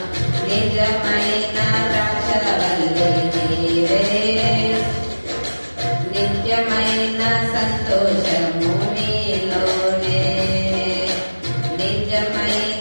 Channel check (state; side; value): inverted; both; correlation -1.00